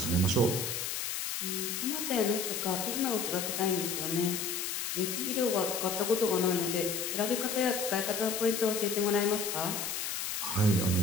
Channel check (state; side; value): noise; left; hiss, 3 dB below the sound